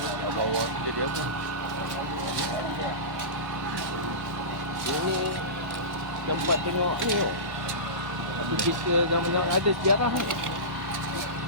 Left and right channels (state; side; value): late; left; 1.1 ms